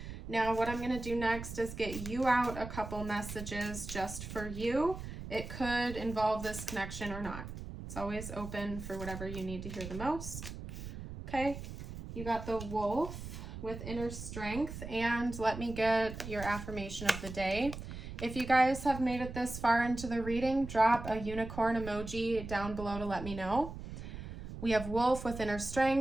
now what I'm going to do next is get you out a couple messages just for you. It could involve this connection or not. It's always open for whatever you need to hear the most. Okay, you got the wolf with inner strength, and let me get your affirmation of the day. If you guys have made it this far into the reading, drop a unicorn emoji down below to let me know. We have wolf with inner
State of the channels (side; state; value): right; noise; rumble, 9 dB below the sound